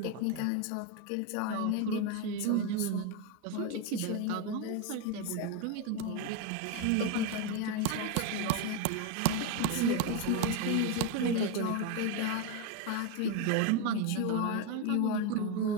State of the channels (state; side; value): different; both; correlation 0.02